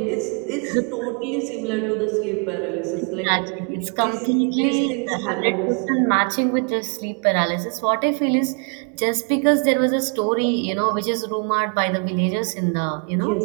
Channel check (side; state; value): left; quieter; 38.9 dB